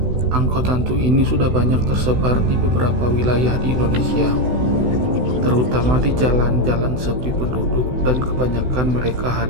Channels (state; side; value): late; left; 16 ms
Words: Angkot hantu ini sudah banyak tersebar di beberapa wilayah di Indonesia, terutama di jalan-jalan sepi penduduk, dan kebanyakan mereka